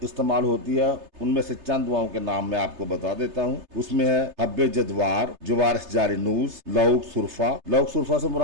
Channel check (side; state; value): left; late; 3.3 ms